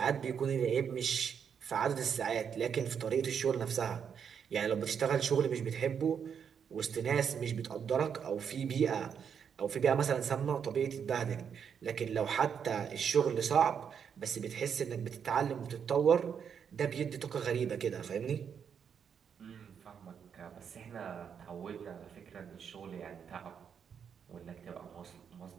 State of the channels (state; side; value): quieter; left; 7.4 dB